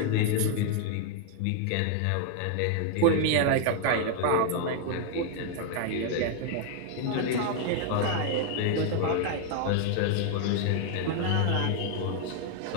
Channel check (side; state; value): both; different; correlation 0.00